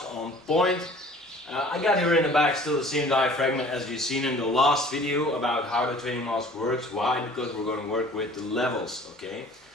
on point. I got here in the back still the same diaphragm as you've seen in the last video about how the training mask works. Why? Because we're going to work with the levels, okay?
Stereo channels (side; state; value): both; normal; correlation 0.49